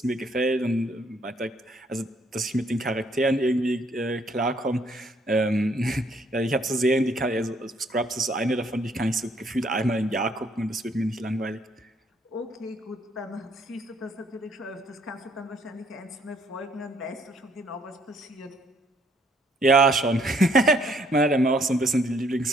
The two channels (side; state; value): both; normal; correlation 0.66